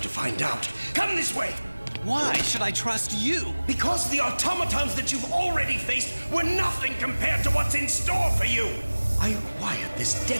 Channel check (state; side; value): inverted; both; correlation -1.00